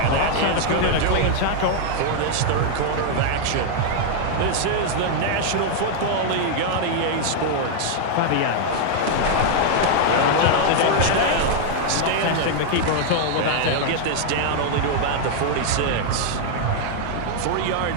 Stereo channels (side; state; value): both; different; correlation 0.00